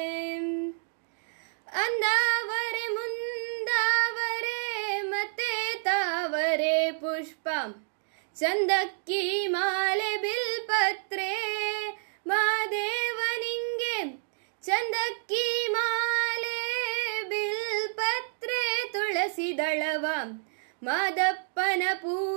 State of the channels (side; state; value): left; silent; digital silence